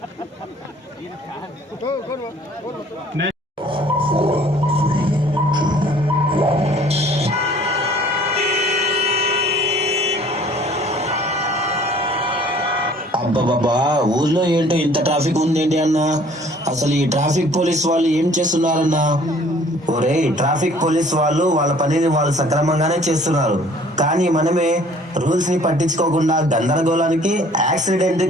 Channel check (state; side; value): normal; both; correlation 0.54